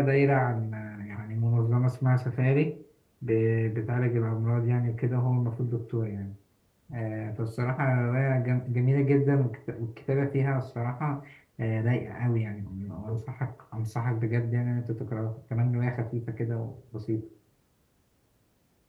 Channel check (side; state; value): both; identical; correlation 1.00